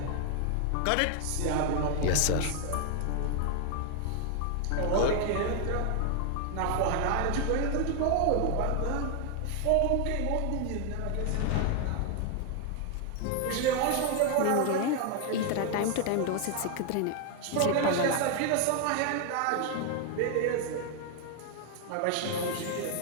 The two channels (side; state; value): both; different; correlation 0.00